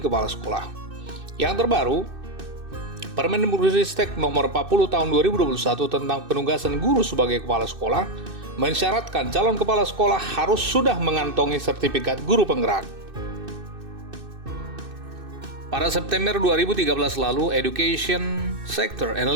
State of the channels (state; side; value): late; left; 2.6 ms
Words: sekolah. Yang terbaru, Permendikbudristek nomor 40 tahun 2021 tentang penugasan guru sebagai kepala sekolah mensyaratkan calon kepala sekolah harus sudah mengantongi sertifikat guru penggerak. Pada September 2013 lalu, Education Sector